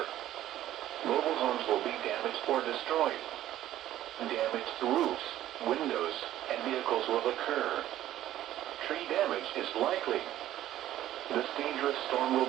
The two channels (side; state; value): left; quieter; 13.2 dB